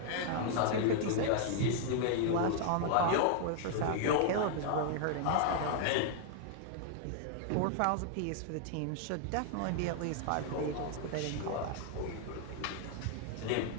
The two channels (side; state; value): both; different; correlation 0.00